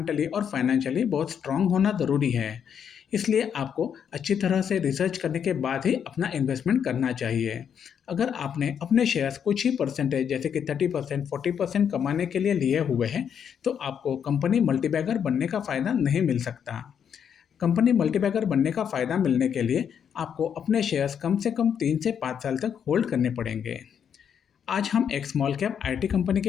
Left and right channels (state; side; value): quieter; right; 8.0 dB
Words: और फाइनेंशियली बहुत स्ट्रांग होना ज़रूरी है। इसलिए आपको अच्छी तरह से रिसर्च करने के बाद ही अपना इन्वेस्टमेंट करना चाहिए। अगर आपने अपने शेयर्स कुछ ही परसेंटेज जैसे कि 30% 40% कमाने के लिए लिए हुए हैं, तो आपको कंपनी मल्टीबैगर बनने का फ़ायदा नहीं मिल सकता। कंपनी मल्टीबैगर बनने का फ़ायदा मिलने के लिए आपको अपने शेयर्स कम से कम 3 से 5 साल तक होल्ड करने पड़ेंगे। आज हम एक स्मॉल कैप आईटी कंपनी